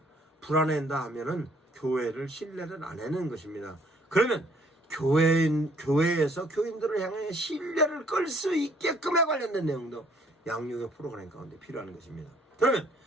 불안해한다 하면은 교회를 신뢰를 안 하는 것입니다. 그러면 교회에서 교인들을 향해 신뢰를 끌 수 있게끔에 관련된 내용도 양육의 프로그램 가운데 필요한 것입니다. 그러면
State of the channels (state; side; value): normal; both; correlation 0.63